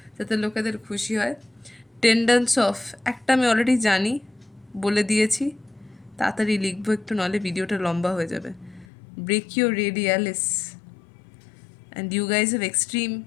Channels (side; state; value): right; drops out; at 8.8 s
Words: যাতে লোকেদের খুশি হয়। টেন্ডেন্স অফ, একটা আমি অলরেডি জানি, বলে দিয়েছি, তাড়াতাড়ি লিখবো একটু, নাহলে ভিডিওটা লম্বা হয়ে যাবে। Brachioradialis, and you guys have extreme,